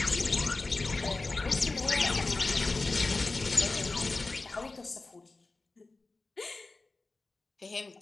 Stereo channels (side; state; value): right; quieter; 3.5 dB